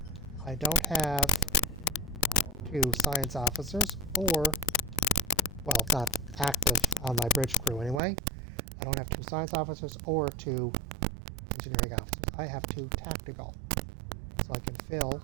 I don't have 2 science officers, or, well, it's not active on my bridge crew anyway. I don't have 2 science officers or 2 engineering officers. I have 2 tactical. So I can fill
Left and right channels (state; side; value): drops out; left; at 8.0 s